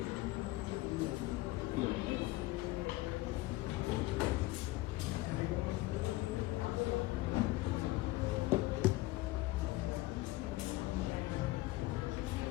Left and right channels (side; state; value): right; quieter; 19.0 dB